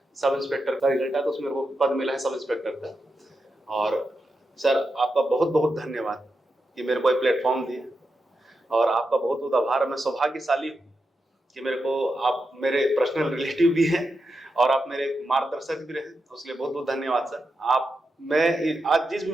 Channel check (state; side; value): normal; both; correlation 0.87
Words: सब इंस्पेक्टर का रिजल्ट आया तो उसमें मेरे को पद मिला है सब इंस्पेक्टर का। और सर आपका बहुत बहुत धन्यवाद कि मेरे को एक प्लेटफॉर्म दिया, और आपका बहुत बहुत आभार। मैं सौभाग्यशाली हूँ कि मेरे को आप मेरे पर्सनल रिलेटिव भी हैं और आप मेरे मार्गदर्शक भी रहे, उसके लिए बहुत बहुत धन्यवाद सर। मैं आज जिस भी